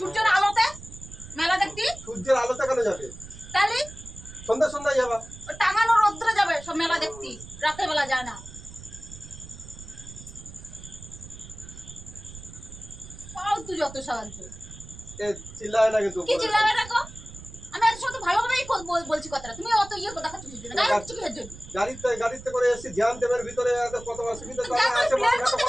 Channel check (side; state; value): right; noise; rumble, 16 dB below the sound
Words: আলোতে মেলা দেখতি? সূর্যের আলোতে কেন যাবে? তাহলে সন্ধ্যা সন্ধ্যায় যাবা। টাঙানো রোদ্রে যাবে সব মেলা দেখতি, রাতের বেলা যায় না। ফালতু যত সাহায্য। এ চিল্লায় না কিন্তু কি চিল্লাবে না গো? আমি এর সাথে ভালোভাবেই বলছি কথাটা, তুমি অত ইয়ে দেখাচ্ছ কিছু না, গায়ে কিছু কিসের জন্য? গাড়িতে করে এসে জ্যাম দেবের ভিতরে এত কত অসুবিধা, তারা আসে মানুষ এত